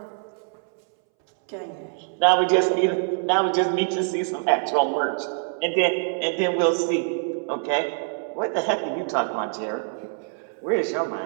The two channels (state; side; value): silent; left; 62 dB below the other